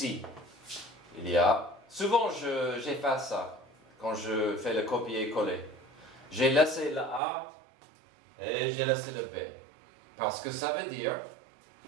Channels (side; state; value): left; drops out; at 7.2 s